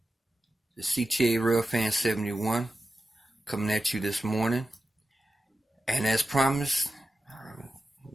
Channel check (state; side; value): normal; both; correlation 0.92